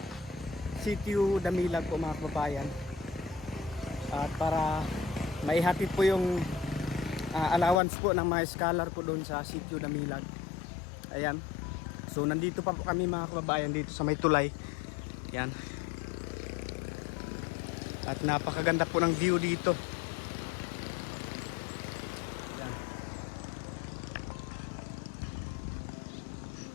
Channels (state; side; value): drops out; right; at 7.8 s